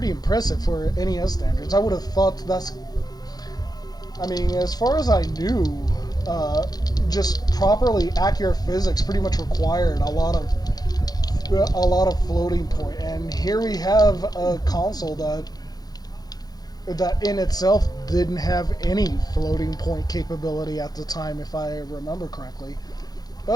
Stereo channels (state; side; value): late; right; 0.19 ms